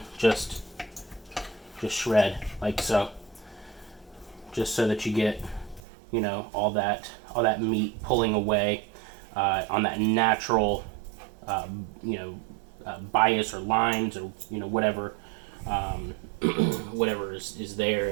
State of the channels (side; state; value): left; drops out; at 5.8 s